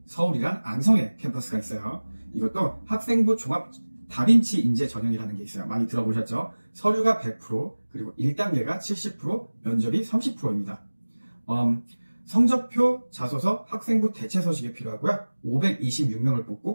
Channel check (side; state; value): both; inverted; correlation -1.00